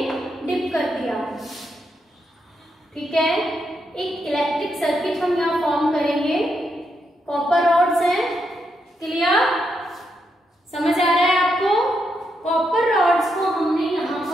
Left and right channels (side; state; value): both; normal; correlation 0.81